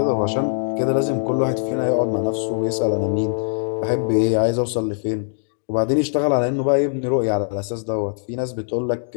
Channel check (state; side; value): silent; right; digital silence